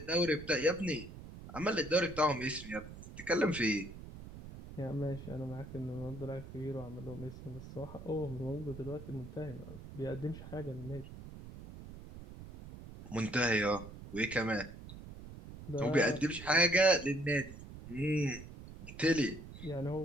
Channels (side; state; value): right; noise; rumble, 13 dB below the sound